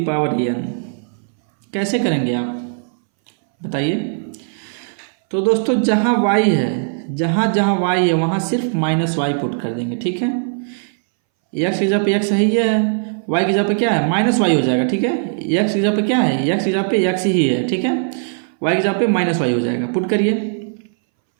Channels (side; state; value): left; silent; 63 dB below the other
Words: power n, कैसे करेंगे आप बताइए। तो दोस्तों जहाँ y है, जहाँ y है वहाँ सिर्फ माइनस वाई पुट कर देंगे। ठीक है, x की जगह पे x ही है, y की जगह पे क्या है माइनस वाई हो जाएगा। ठीक है, x की जगह पे क्या है, x की जगह पे x ही है। ठीक है, y की जगह पे माइनस वाई हो जाएगा। पुट करिए